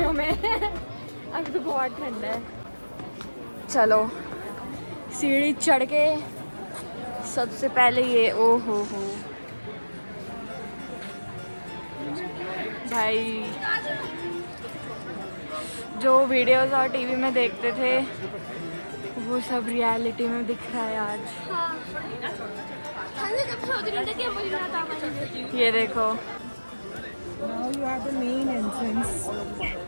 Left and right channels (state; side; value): inverted; both; correlation -1.00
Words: में अभी तो बहुत ठंड है। चलो सीढ़ी चढ़ के सबसे पहले ये, ओ हो भाई, जो वीडियोस और टीवी में देखते थे वो सब रियलिटी में दिख रहा है आज। ये देखो,